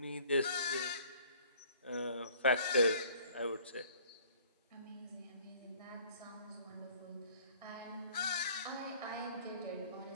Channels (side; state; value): both; inverted; correlation -0.54